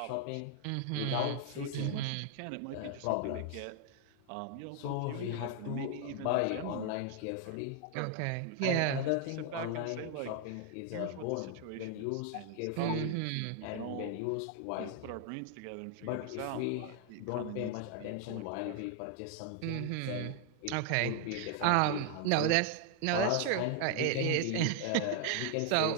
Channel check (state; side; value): different; both; correlation 0.00